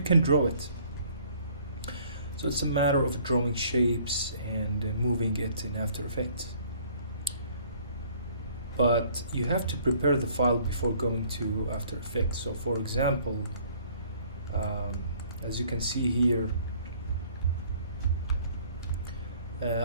can draw it. So it's a matter of drawing shapes and moving it in After Effects. But you have to prepare the file before going to After Effects. So for example, as you can see here,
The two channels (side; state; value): both; inverted; correlation -0.58